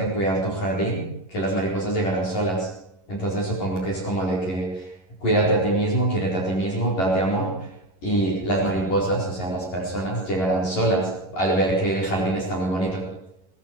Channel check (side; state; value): right; late; 11 ms